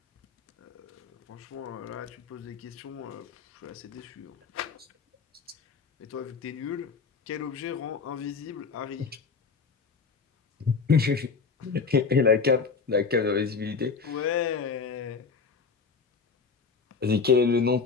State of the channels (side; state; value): right; quieter; 5.1 dB